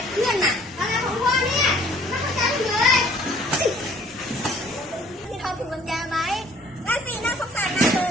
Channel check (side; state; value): both; normal; correlation 0.57